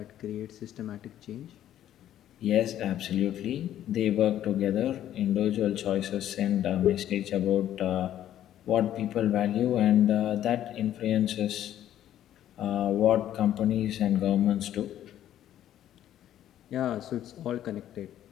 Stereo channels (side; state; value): right; quieter; 11.7 dB